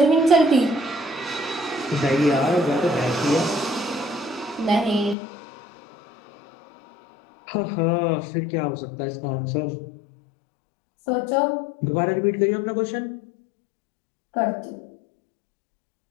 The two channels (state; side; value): drops out; right; at 5.2 s